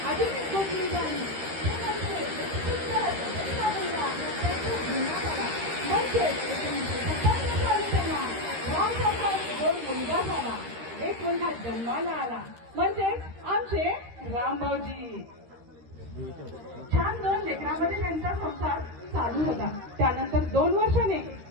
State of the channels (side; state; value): left; late; 13 ms